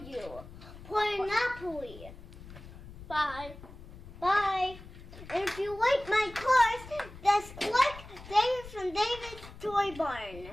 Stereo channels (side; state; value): left; noise; rumble, 16 dB below the sound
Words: Monopoly. Bye. Bye. And if you like my cars, just click David from David's Toy Barn.